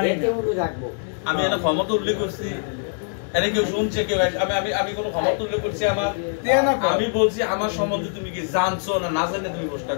এতে উড়ু থাকবো। আমি এটা ক্ষমতা উল্লেখ করছি, এনে কেউ শুনছে কেউ? আমি কোনো ক্ষমতা উল্লেখ করছি আমার? আমি বলছি আমার সম্বন্ধে তুমি কি জানছো না না জানে তুমি প্রশ্ন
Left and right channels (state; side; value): silent; right; digital silence